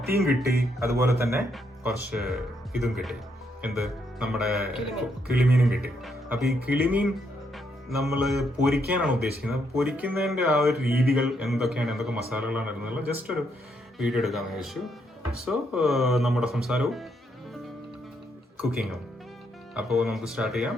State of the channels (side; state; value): both; normal; correlation 0.76